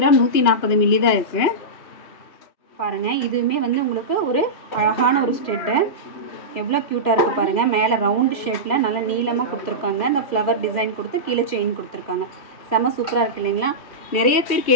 140 மில்லி தான் இருக்குது. பாருங்கள், இதுவுமே வந்து உங்களுக்கு ஒரு அழகான ஒரு ஸ்டெட்டு. எவ்வளோ க்யூட்டாக இருக்குது பாருங்கள். மேலே ரவுண்டு ஷேப்பில் நல்லா நீளமாக கொடுத்துருக்காங்க. அந்த ஃப்ளவர் டிசைன் கொடுத்து கீழே செயின் கொடுத்துருக்காங்க. செம்ம சூப்பராக இருக்குது இல்லைங்களா? நிறைய பேர்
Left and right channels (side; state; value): right; late; 2.4 ms